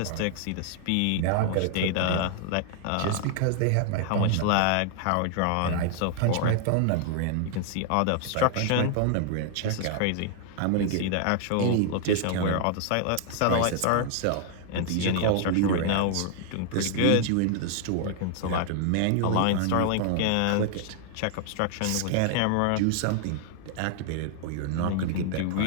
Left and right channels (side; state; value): both; different; correlation 0.00